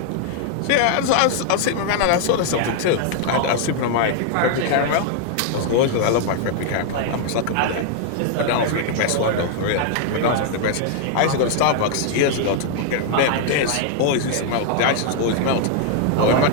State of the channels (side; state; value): both; different; correlation 0.00